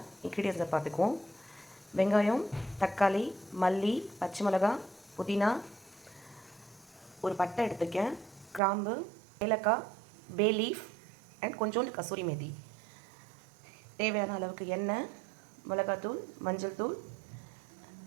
இன்க்ரீடியன்ஸை பார்த்துக்குவோம். வெங்காயம், தக்காளி, மல்லி, பச்சை மிளகாய், புதினா, ஒரு பட்டை எடுத்துக்கேன், கிராம்பு, ஏலக்காய், பே லீஃப் அண்ட் கொஞ்சோண்டு கசூரி மேதி. தேவையான அளவுக்கு எண்ணெய், மிளகாத்தூள், மஞ்சள் தூள்,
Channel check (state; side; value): drops out; left; at 8.6 s